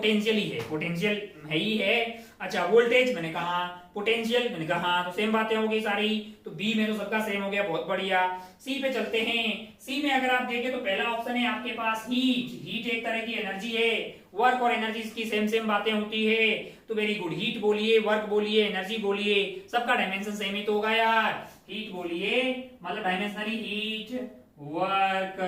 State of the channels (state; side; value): identical; both; correlation 1.00